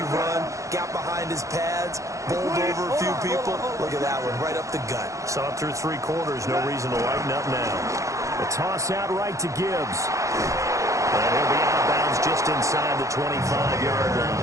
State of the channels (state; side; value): late; left; 0.15 ms